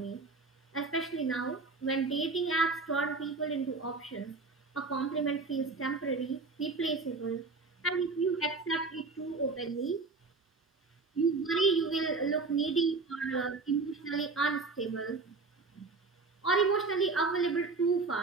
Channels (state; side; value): quieter; left; 4.0 dB